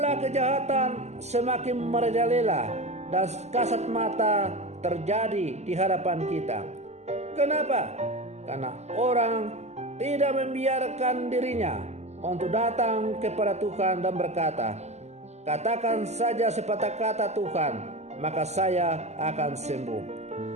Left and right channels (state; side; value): late; left; 0.33 ms